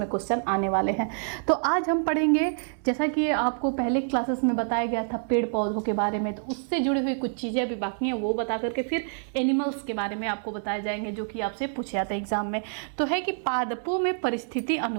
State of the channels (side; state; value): left; silent; digital silence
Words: क्वेश्चन आने वाले हैं। तो आज हम पढ़ेंगे, जैसा कि आपको पहले क्लासेस में बताया गया था पेड़ पौधों के बारे में, तो उससे जुड़ी हुई कुछ चीज़ें अभी बाकी हैं वो बता करके फिर एनिमल्स के बारे में आपको बताए जाएंगे जो कि आपसे पूछे जाते हैं एग्जाम में। तो है कि पादपों में परिस्थिति